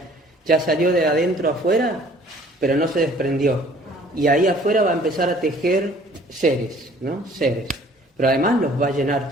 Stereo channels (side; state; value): both; normal; correlation 0.55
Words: ya salió de adentro afuera, pero no se desprendió. Y ahí afuera va a empezar a tejer seres, ¿no? Seres. Pero además los va a llenar